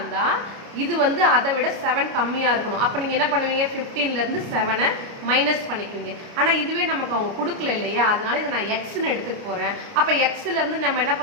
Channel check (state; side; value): late; left; 29 ms